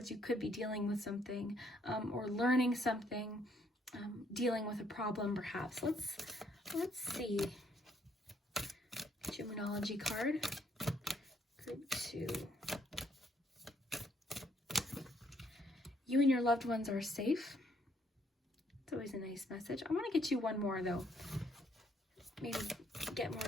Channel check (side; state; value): both; normal; correlation 0.69